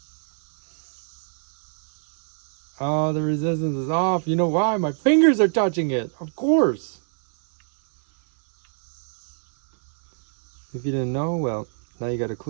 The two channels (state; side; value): silent; left; 61 dB below the other